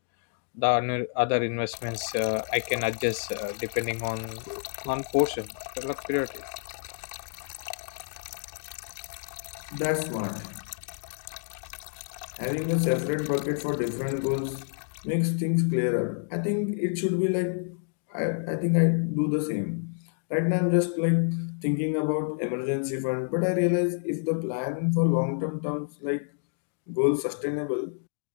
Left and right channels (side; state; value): right; silent; digital silence